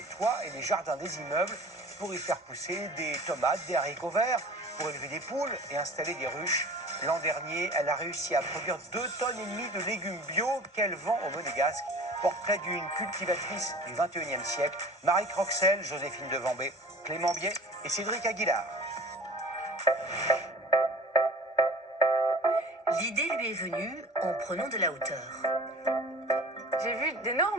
toits et les jardins des immeubles pour y faire pousser des tomates, des haricots verts, pour élever des poules et installer des ruches. L'an dernier, elle a réussi à produire 2,5 tonnes de légumes bio qu'elle vend au Monégasque. Portrait d'une cultivatrice du 21e siècle, Marie Croxel, Joséphine Devambé, Clément Biet et Cédric Aguilar. L'idée lui est venue en prenant de la hauteur. J'ai vu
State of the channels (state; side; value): normal; both; correlation 0.42